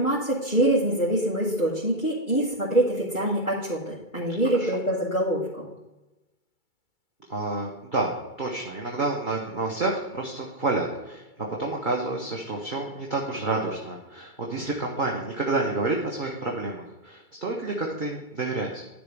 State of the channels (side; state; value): right; late; 2.3 ms